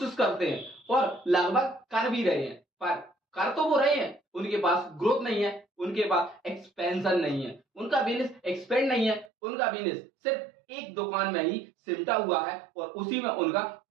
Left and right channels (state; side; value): drops out; left; at 9.3 s